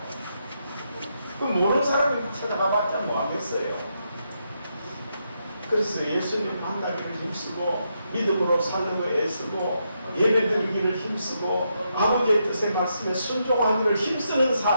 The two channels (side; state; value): both; inverted; correlation -0.81